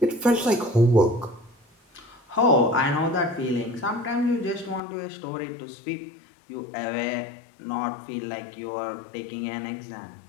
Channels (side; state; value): right; drops out; at 4.8 s